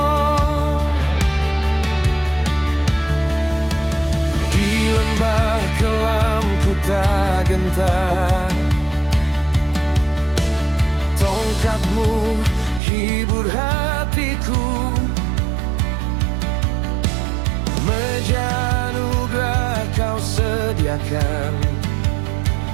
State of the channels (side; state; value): left; drops out; at 12.8 s